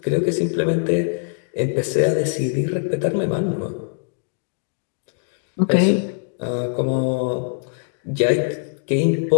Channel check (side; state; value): right; silent; digital silence